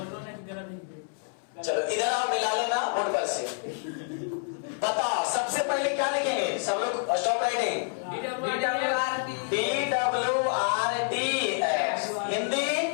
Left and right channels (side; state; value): right; silent; 59 dB below the other